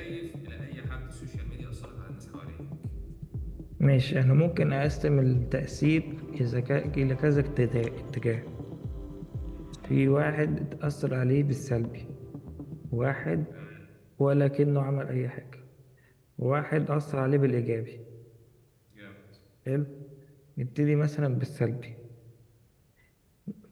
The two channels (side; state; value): both; identical; correlation 1.00